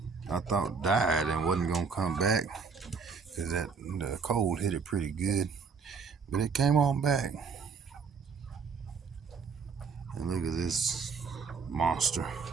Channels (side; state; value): left; quieter; 5.4 dB